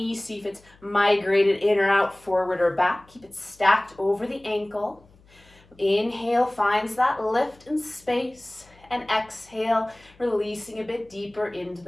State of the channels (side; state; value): left; noise; hum, 29 dB below the sound